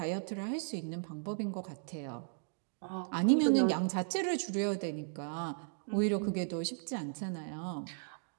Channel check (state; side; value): silent; left; digital silence